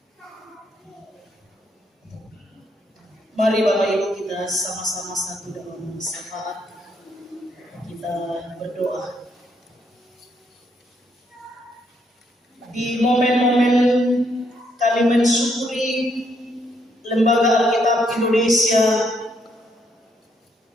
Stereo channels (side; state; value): both; normal; correlation 0.74